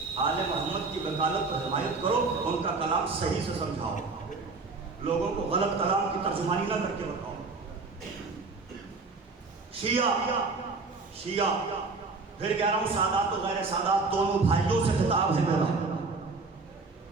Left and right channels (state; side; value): quieter; left; 4.0 dB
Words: آل محمد کی وکالت کو حمایت کرو، ان کا کلام صحیح سے سمجھاؤ، لوگوں کو غلط کلام کی ترجمانی نہ کر کے بتاؤ. شیعہ پھر کہہ رہا ہوں سادات و غیر سادات دونوں بھائیوں سے خطاب ہے میرا.